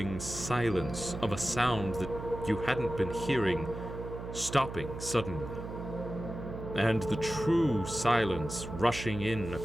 silence of a sound that you hadn't been hearing, stopping suddenly. And the true silence rushing in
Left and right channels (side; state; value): right; noise; hum, 9 dB below the sound